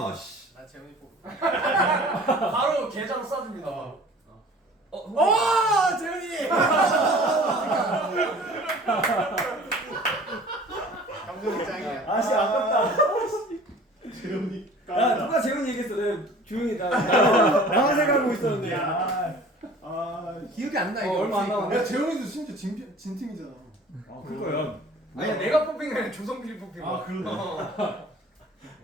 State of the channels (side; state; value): both; normal; correlation 0.47